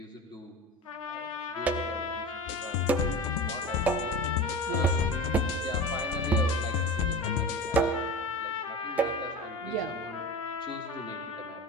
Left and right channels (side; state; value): both; normal; correlation 0.31